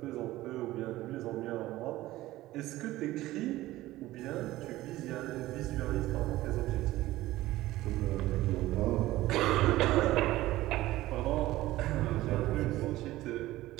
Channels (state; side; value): quieter; left; 16.6 dB